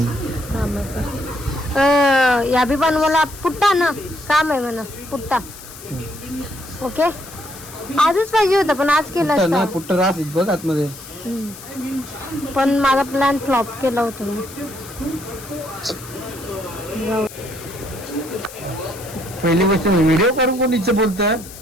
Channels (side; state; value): left; noise; hiss, 16 dB below the sound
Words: रामाचा. या बी बनवायला पुट्टा ना काम आहे म्हणा. पुट्टा ओके. आजच पाहिजे होतं पण आज केलं असतं. पुट्ट रास बघ आतमध्ये. पण माझा प्लॅन फ्लॉप केला होता मी. पहिली गोष्ट व्हिडिओ करून कोण इच्छा बोलतं